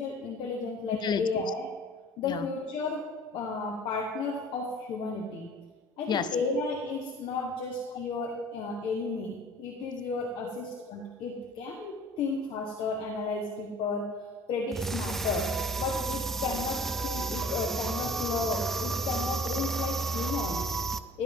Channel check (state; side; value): normal; both; correlation 0.48